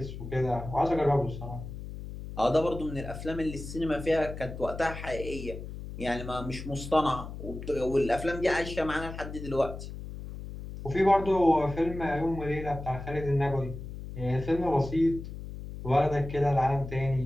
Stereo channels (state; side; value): noise; left; hum, 10 dB below the sound